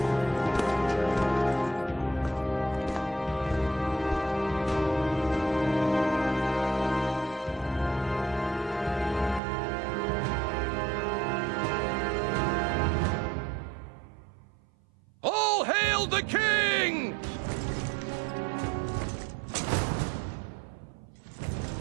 All hail the king!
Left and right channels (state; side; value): drops out; left; at 9.4 s